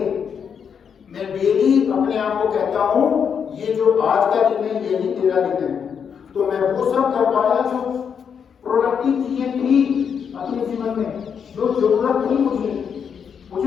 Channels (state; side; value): quieter; right; 7.1 dB